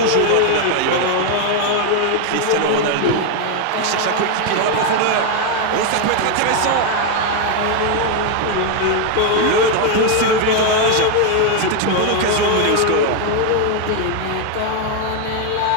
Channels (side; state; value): both; different; correlation 0.01